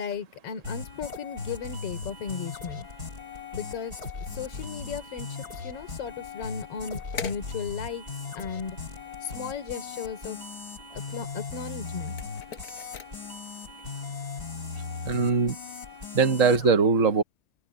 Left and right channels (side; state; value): right; late; 1.8 ms